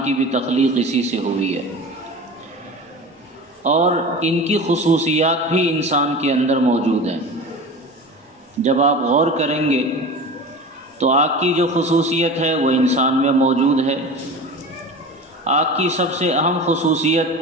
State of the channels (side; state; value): both; normal; correlation 0.33